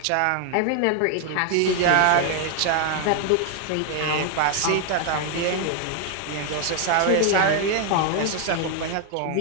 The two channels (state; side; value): different; both; correlation 0.01